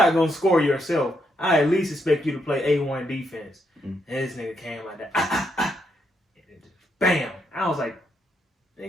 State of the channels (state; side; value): normal; both; correlation 0.78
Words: going to score yourself, I at least expect you to play A1 defense. And this nigga came like that. And it just, bam. I was like,